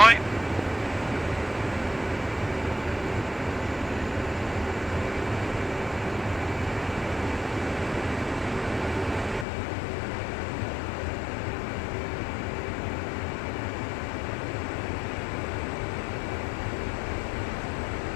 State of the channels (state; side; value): drops out; right; at 9.5 s